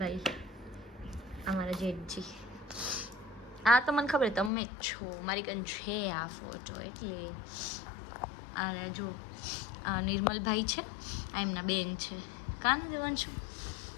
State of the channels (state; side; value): drops out; right; at 4.5 s